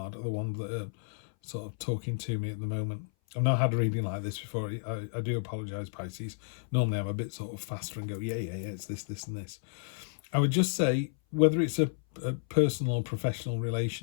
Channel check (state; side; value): silent; right; 56 dB below the other